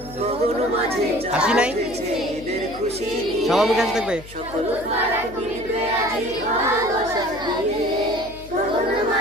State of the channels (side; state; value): left; noise; hum, 17 dB below the sound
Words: হাসি নাই, সবার মুখে হাসি থাকবে।